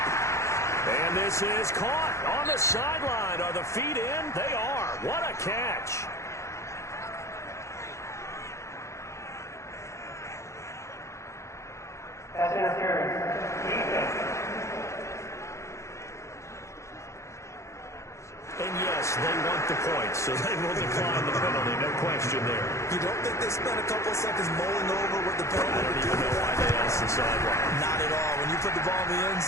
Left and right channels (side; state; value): right; late; 0.14 ms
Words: And this is caught on the sideline. Are the feet in? They are. What a catch. Pass interference. And yes, they want the points, so they will decline the penalty. No question there. You don't think they spent a couple of seconds mulling over what the penalty I don't would even do? know why they asked the sideline. Not at all. When you put the ball in the end